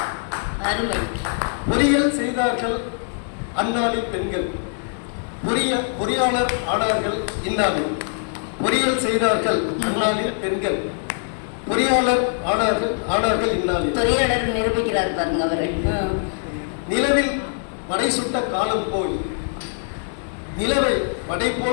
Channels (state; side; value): silent; right; digital silence